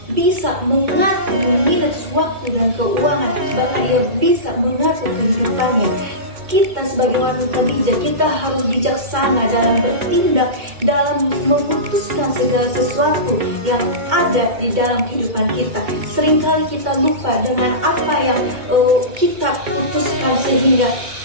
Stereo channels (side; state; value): left; late; 2.2 ms